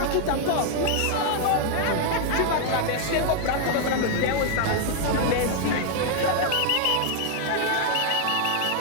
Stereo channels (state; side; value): different; both; correlation 0.00